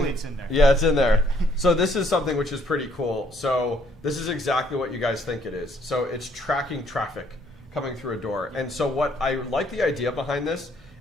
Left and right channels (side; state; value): both; normal; correlation 0.66